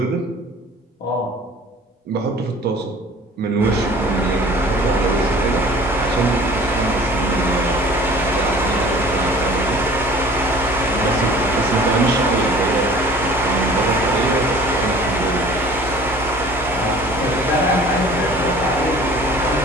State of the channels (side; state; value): both; normal; correlation 0.47